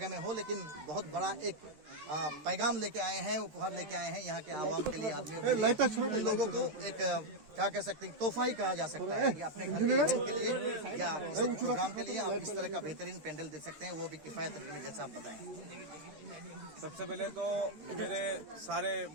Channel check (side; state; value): left; late; 13 ms